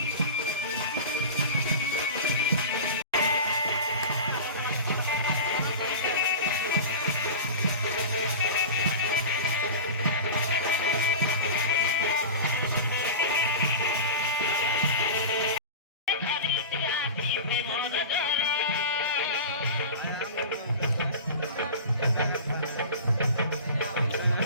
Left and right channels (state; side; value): inverted; both; correlation -0.30